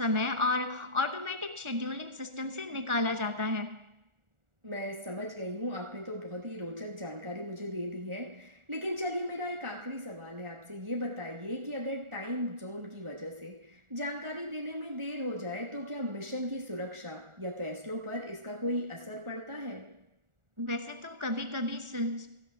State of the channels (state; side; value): late; left; 1.4 ms